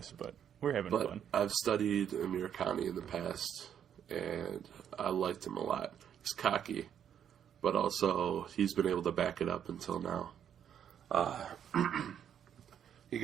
but we're having But fun. I've studied Amir Khan in the past, and I liked him a lot. He's cocky, but also he's been able to back it up until now. He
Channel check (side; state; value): left; quieter; 9.0 dB